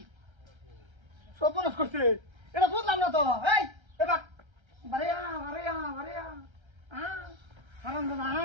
সপনস করছে এটা বুঝলাম না তো এই এবার বারেয়া হারাম দাদা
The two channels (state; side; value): late; left; 1.3 ms